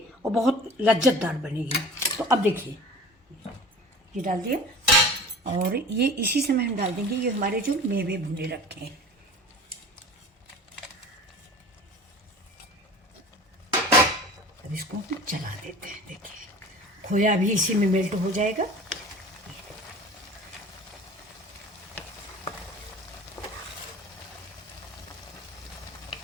और बहुत लज्जतदार बनेगी। तो अब देखिए, ये डाल दिया, और ये इसी समय हम डाल देंगे ये हमारे जो मेवे भुने रखे हैं। अब इसको चला देते हैं। देखिए, खोया भी इसी में मेल्ट हो जाएगा।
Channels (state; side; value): normal; both; correlation 0.39